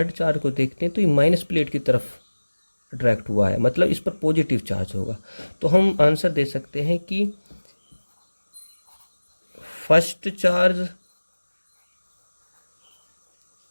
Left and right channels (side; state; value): both; inverted; correlation -1.00